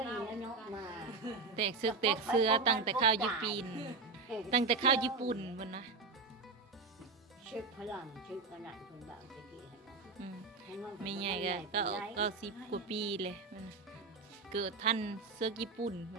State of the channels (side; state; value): left; quieter; 4.1 dB